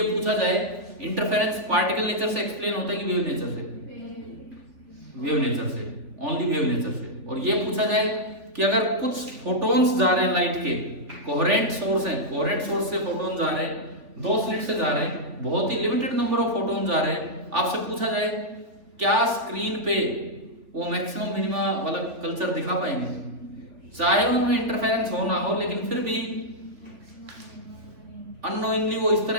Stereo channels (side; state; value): left; late; 3.4 ms